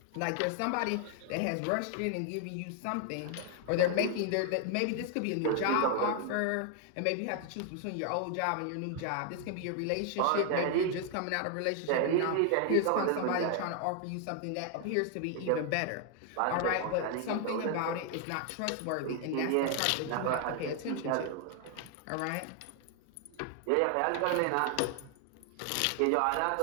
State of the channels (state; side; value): different; both; correlation 0.00